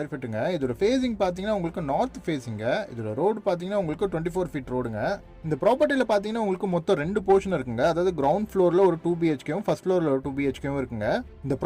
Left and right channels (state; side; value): identical; both; correlation 1.00